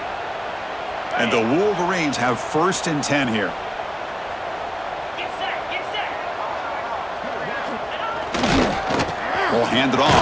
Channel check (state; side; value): identical; both; correlation 1.00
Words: And the Wolverines have 1st and 10 here. Will hand it